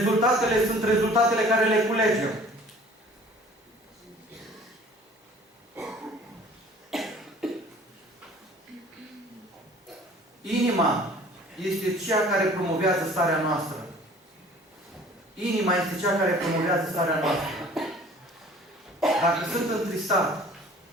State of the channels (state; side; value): normal; both; correlation 0.50